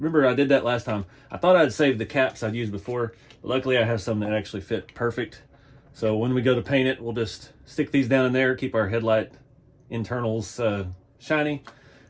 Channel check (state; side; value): identical; both; correlation 1.00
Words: I did that last time. I thought I'd saved the caps I'd used before. But luckily I have some that actually fit perfect. So when we go to paint it, we'll just stick these down in there, keep our headlight internals shiny.